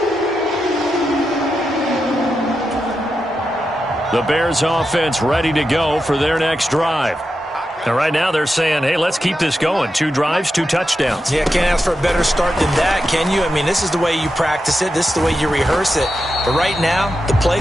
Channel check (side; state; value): both; normal; correlation 0.88